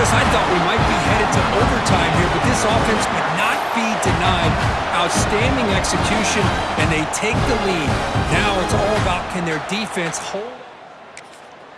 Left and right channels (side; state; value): both; identical; correlation 1.00